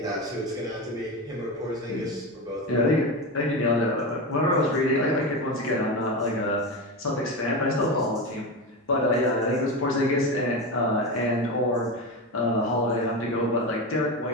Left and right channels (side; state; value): both; normal; correlation 0.19